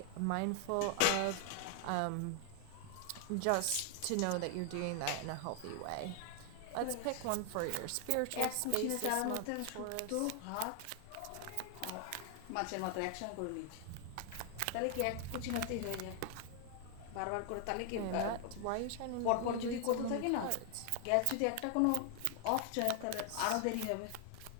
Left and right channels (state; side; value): different; both; correlation 0.00